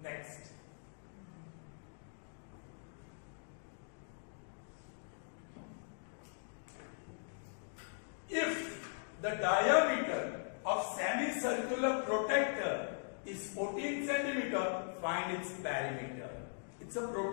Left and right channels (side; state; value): right; silent; digital silence